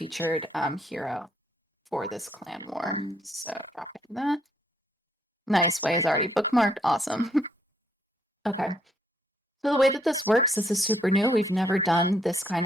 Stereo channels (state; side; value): normal; both; correlation 0.71